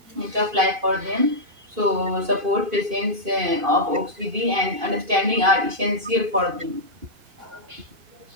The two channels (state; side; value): late; left; 2.5 ms